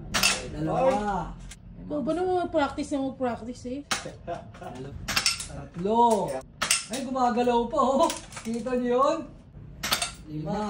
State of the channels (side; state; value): both; identical; correlation 1.00